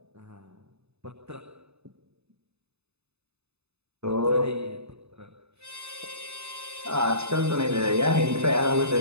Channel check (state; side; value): late; left; 0.80 ms